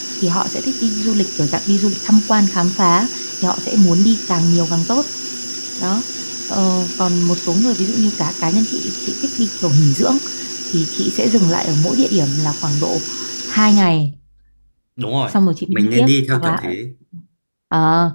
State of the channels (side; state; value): both; inverted; correlation -1.00